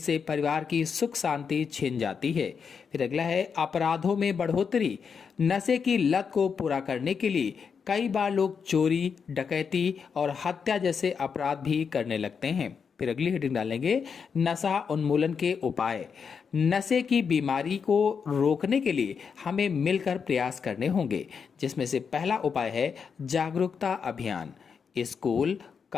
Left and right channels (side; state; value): right; quieter; 6.2 dB